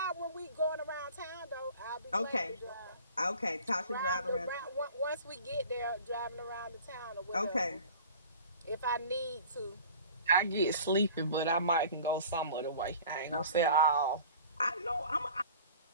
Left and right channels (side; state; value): both; inverted; correlation -0.44